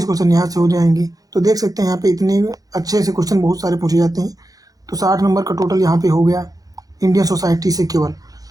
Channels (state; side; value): late; left; 0.18 ms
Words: क्वेश्चन यहाँ से हो जाएंगे। तो देख सकते हैं यहाँ पे इतने अच्छे से क्वेश्चन बहुत सारे पूछे जाते हैं। तो 60 नंबर का टोटल यहाँ पे हो गया इंडियन सोसाइटी से केवल।